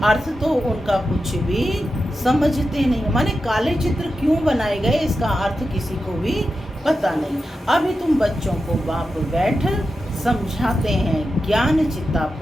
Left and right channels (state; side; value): normal; both; correlation 0.90